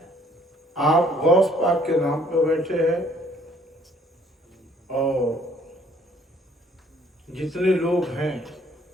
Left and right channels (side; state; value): both; normal; correlation 0.61